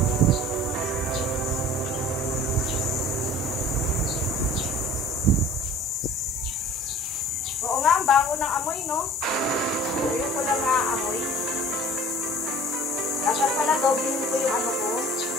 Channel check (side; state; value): both; normal; correlation 0.46